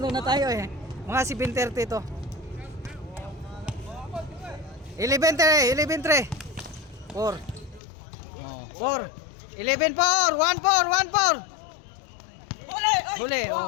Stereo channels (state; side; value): drops out; right; at 7.8 s